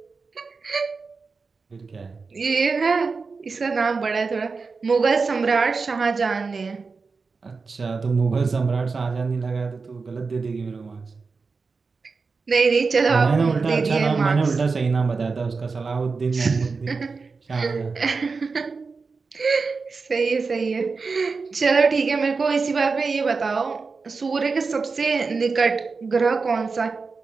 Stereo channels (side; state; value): left; quieter; 4.5 dB